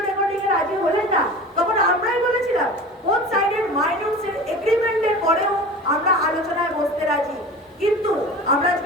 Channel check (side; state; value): both; normal; correlation 0.36